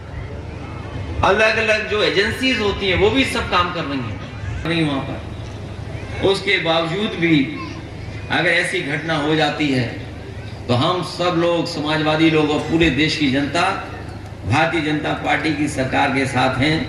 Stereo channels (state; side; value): identical; both; correlation 1.00